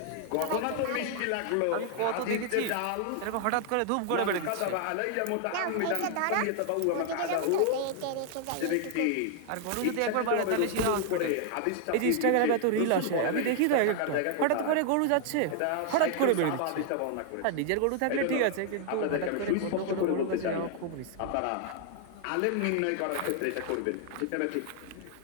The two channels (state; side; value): different; both; correlation 0.00